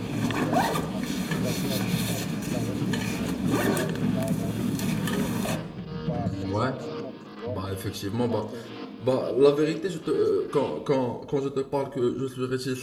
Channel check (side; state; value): both; identical; correlation 1.00